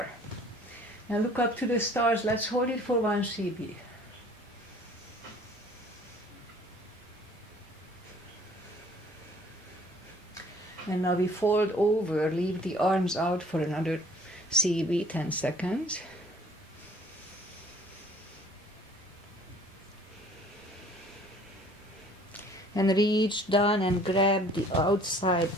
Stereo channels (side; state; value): both; normal; correlation 0.54